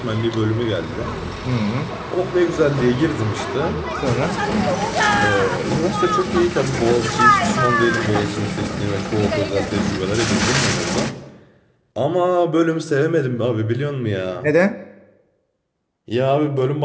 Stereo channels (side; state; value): both; identical; correlation 1.00